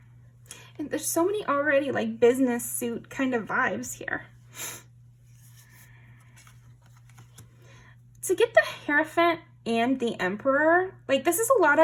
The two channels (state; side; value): identical; both; correlation 1.00